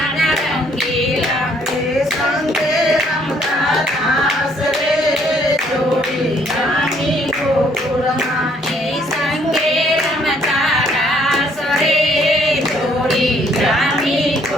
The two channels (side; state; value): both; normal; correlation 0.65